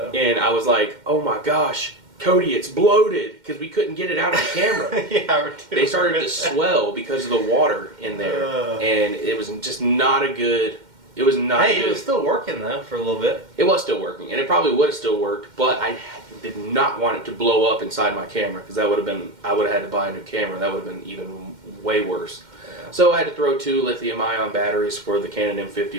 And I was like, oh my gosh, Cody, it's bloated, because we couldn't get it out of the camera. Yeah, they started to swell because of the water in there, and it was just not a good. It was not. Hey, good. It was still working though for a little bit. It was still working, and it probably would have still worked, but I did not want it to blow up inside my camera because that would have been. I would have had to buy a new camera. That would have been even way worse. Yeah. So I had to throw 2 lithium-ion batteries for the Canon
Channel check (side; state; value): left; late; 2.1 ms